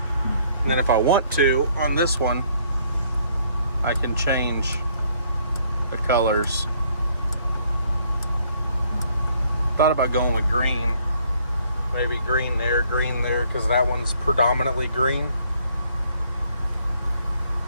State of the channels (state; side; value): inverted; both; correlation -0.65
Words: then if I want to, on this one, I can change the colors. Thought about going with green. Maybe green there, because that one's predominantly green.